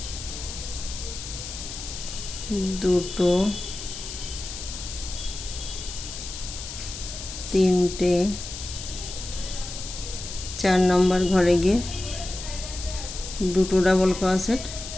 দুটো, তিনটে, 4 নম্বর ঘরে গিয়ে দুটো ডাবল ক্রোশেট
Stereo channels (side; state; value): left; noise; hiss, 9 dB below the sound